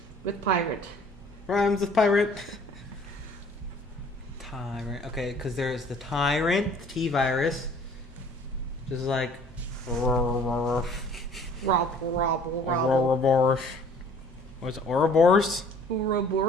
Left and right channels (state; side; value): normal; both; correlation 0.53